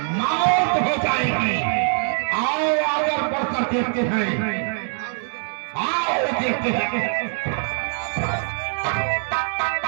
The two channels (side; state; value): left; silent; 63 dB below the other